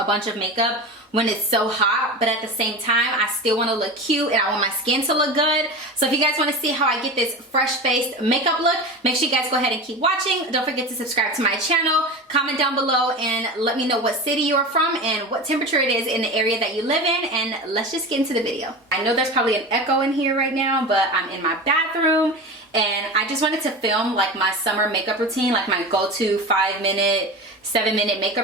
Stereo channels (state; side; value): normal; both; correlation 0.28